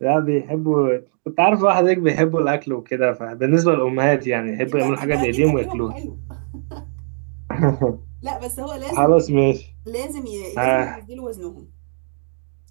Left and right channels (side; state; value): left; silent; digital silence